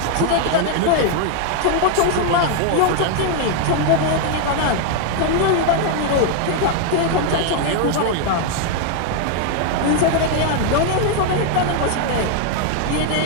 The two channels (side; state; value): both; different; correlation 0.01